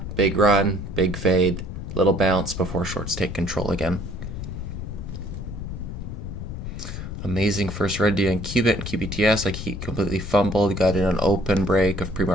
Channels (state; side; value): noise; left; rumble, 7 dB below the sound